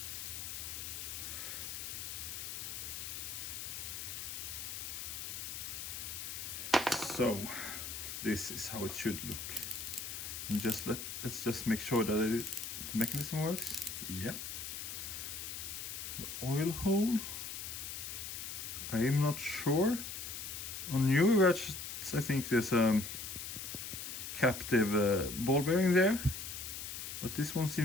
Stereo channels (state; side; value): noise; left; hiss, 6 dB below the sound